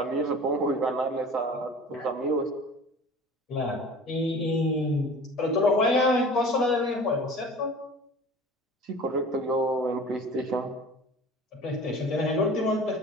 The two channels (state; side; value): normal; both; correlation 0.41